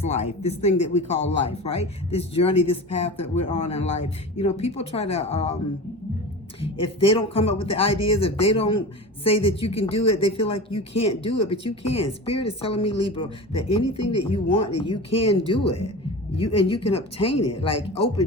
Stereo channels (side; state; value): both; normal; correlation 0.31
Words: life, this thing that we call life, right? This journey, this path that we're on in life. You know, people try to, if they don't come up with the ideas, if they don't say that you can do it, they feel like you can't do it, but you can. Spirit is telling me, Libra, that anything that you want, that you can do it. You can obtain it. Like